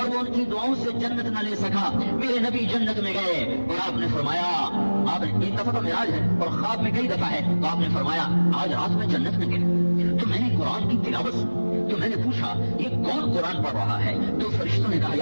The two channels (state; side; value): inverted; both; correlation -1.00